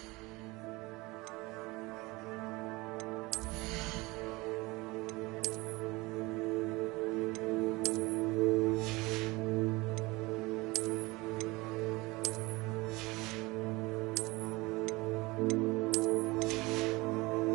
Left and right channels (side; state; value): left; quieter; 22.8 dB